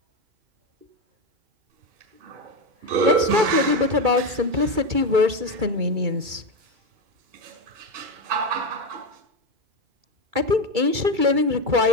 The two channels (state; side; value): late; left; 2.3 ms